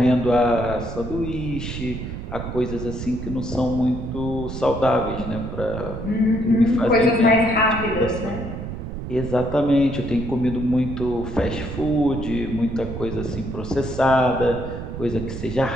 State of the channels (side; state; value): right; noise; rumble, 7 dB below the sound